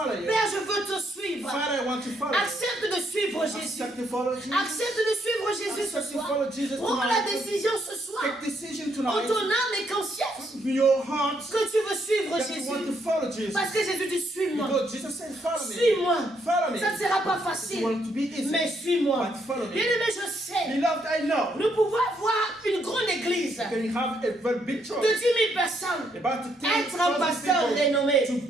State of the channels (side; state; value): both; normal; correlation 0.74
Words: you. Père, je veux te suivre. Father, I want to follow you. Accepte de suivre Jésus. Accept to follow Jesus. Accepte de suivre Jésus ce Accept to soir. follow Jesus Prends la tonight. décision ce soir. Take decision En tonight. ton âme et conscience With your heart que tu veux suivre that you want to Jésus. follow Jesus. Parce que Jésus dit suis-moi. Because Jesus said, follow me. Suis-moi. Follow me. Ça ne sera pas It facile. won't be easy. Mais suis-moi. But follow me. Bien-aimé, je sais. Beloved, I know. Nous pouvons avoir une grande église You can have a very big de church. 10 000 personnes. About to Être un pasteur renommé. to